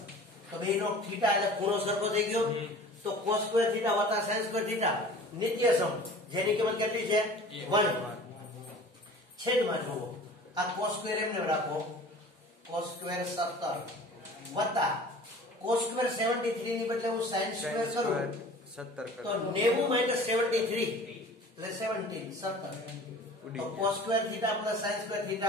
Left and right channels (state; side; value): normal; both; correlation 0.44